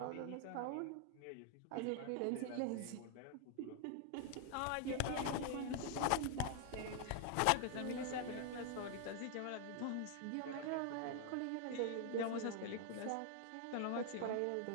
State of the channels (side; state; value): both; different; correlation 0.00